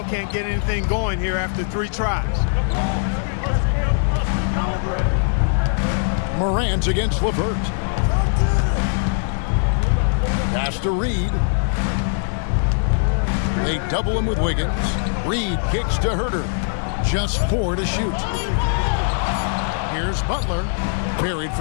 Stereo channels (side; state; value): right; silent; 62 dB below the other